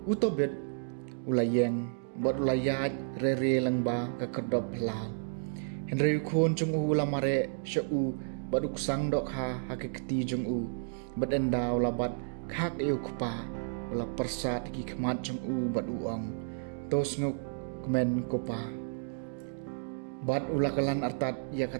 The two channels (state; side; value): silent; left; digital silence